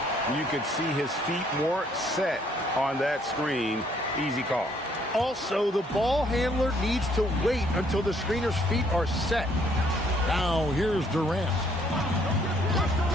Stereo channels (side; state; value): both; normal; correlation 0.66